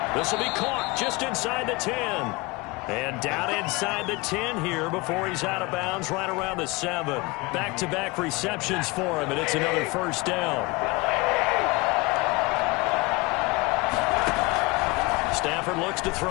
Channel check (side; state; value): right; quieter; 25.0 dB